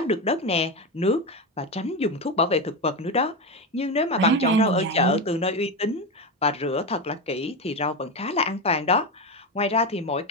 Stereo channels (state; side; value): normal; both; correlation 0.15